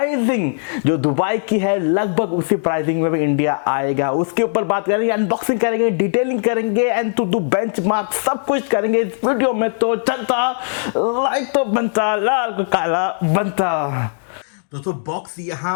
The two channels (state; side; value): silent; right; digital silence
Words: जो दुबई की है लगभग उसी प्राइसिंग में भी इंडिया आएगा, उसके ऊपर बात करेंगे, अनबॉक्सिंग करेंगे, डिटेलिंग करेंगे एंड टू डू बेंचमार्क, सब कुछ करेंगे इस वीडियो में। तो चलता लाइक तो बनता, लाल को काला बनता। दोस्तों बॉक्स